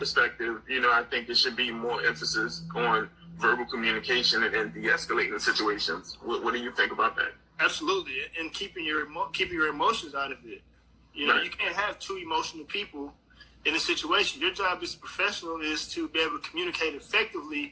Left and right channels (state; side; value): identical; both; correlation 1.00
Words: I think there should be more emphasis on verbal communication and de-escalating situations. What do you think about that? Absolutely, and keeping your emotions out of it. Right. You can't have two emotional people in a situation. Your job as a professional is to be able to communicate